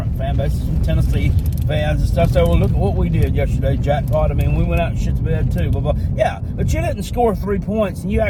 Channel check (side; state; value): both; identical; correlation 1.00